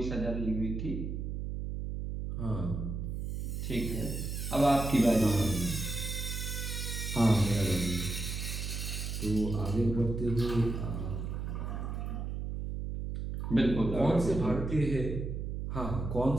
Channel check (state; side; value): noise; right; hum, 4 dB below the sound